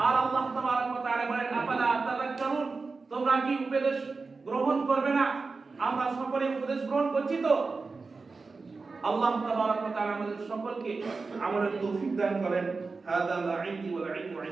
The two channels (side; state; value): left; quieter; 4.2 dB